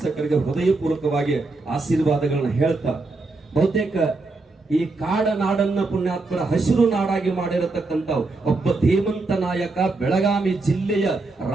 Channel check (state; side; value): quieter; left; 3.4 dB